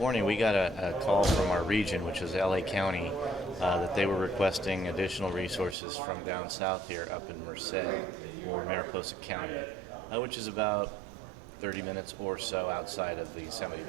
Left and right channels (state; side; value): drops out; left; at 5.8 s